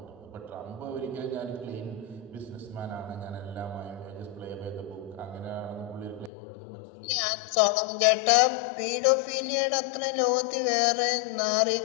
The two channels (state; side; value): drops out; right; at 6.3 s